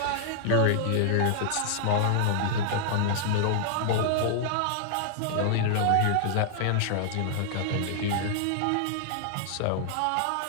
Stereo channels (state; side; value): different; both; correlation -0.01